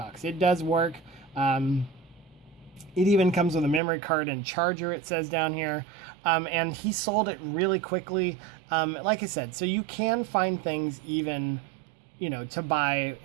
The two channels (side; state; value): left; drops out; at 3.8 s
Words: It does work. It even comes with a memory card and charger, it says down here. and he sold it really quickly. Like I said, so you can find things even, to buy,